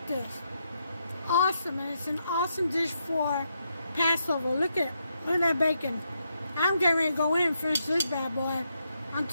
this. Awesome, and it's an awesome dish for Passover. Look at that bacon. I'm getting ready to go in and finish this bad boy.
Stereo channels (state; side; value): inverted; both; correlation -0.81